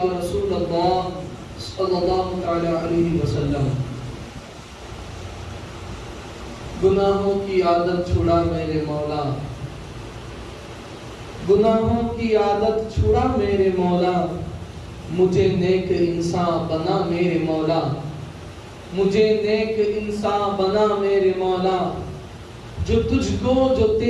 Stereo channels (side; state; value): both; identical; correlation 1.00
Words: رسول اللہ صلی اللہ تعالی علیہ وسلم۔ گناہوں کی عادت چھڑا میرے مولا، گناہوں کی عادت چھڑا میرے مولا، مجھے نیک انسان بنا میرے مولا، مجھے نیک انسان بنا میرے مولا، جو تجھ کو جو